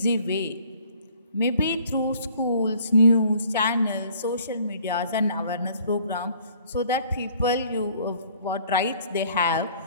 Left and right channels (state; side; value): inverted; both; correlation -0.57